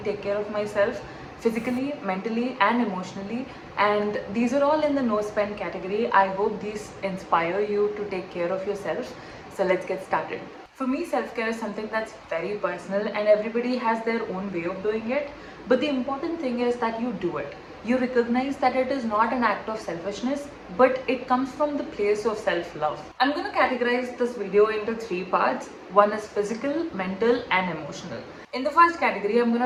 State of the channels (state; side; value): identical; both; correlation 1.00